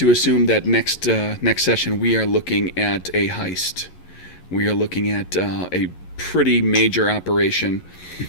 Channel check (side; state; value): right; late; 11 ms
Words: assume that next session we are looking at a heist? We are looking at a pretty major operation.